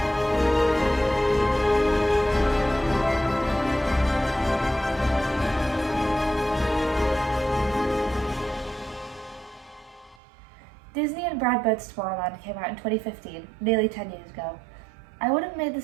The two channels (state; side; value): drops out; left; at 10.2 s